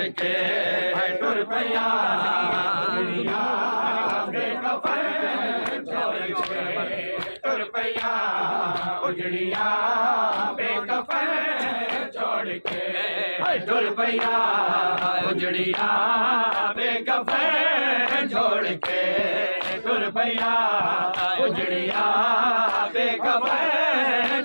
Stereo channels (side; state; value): both; inverted; correlation -1.00